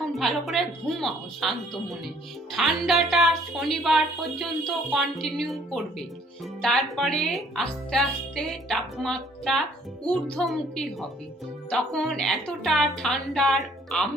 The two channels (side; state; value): both; normal; correlation 0.60